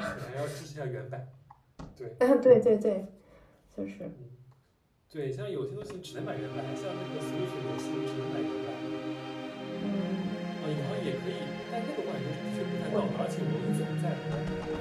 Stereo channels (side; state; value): both; identical; correlation 1.00